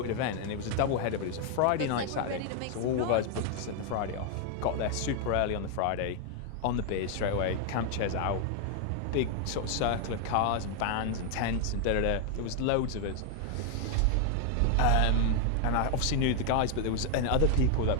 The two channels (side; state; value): both; different; correlation 0.01